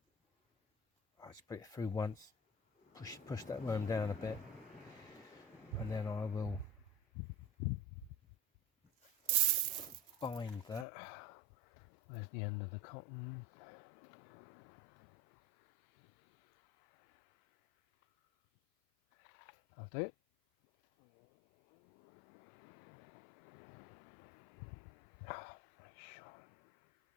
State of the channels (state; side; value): drops out; right; at 10.9 s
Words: I just put it through once. Push that worm down a bit, and then I will bind that. Where's the end of the cotton? I'll do it. Oh, make sure.